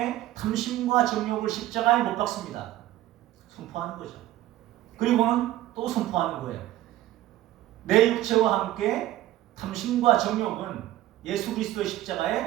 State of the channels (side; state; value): left; quieter; 14.5 dB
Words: 탐심과 정욕을 십자가에 못 박습니다. 선포하는 거죠. 그리고는 또 선포하는 거예요. 내 육체와 함께 탐심과 정욕은 예수 그리스도의